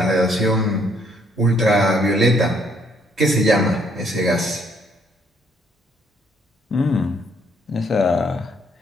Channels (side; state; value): both; normal; correlation 0.68